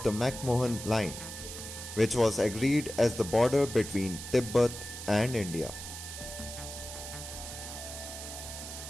the McMahon line, which was agreed as the border between Tibet and India.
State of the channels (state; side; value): noise; right; hiss, 9 dB below the sound